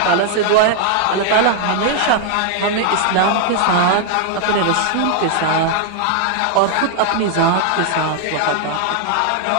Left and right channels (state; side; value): different; both; correlation 0.00